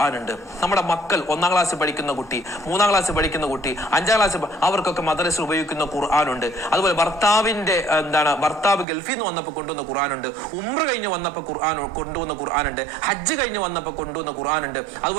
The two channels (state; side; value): drops out; left; at 8.8 s